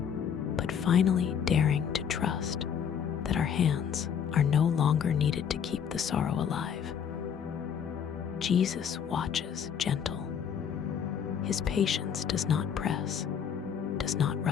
but finally daring to trust that our hands are no longer needed to keep the sorrow alive? Jesus watches gentle. His patience does not press, does not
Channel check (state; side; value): quieter; right; 7.9 dB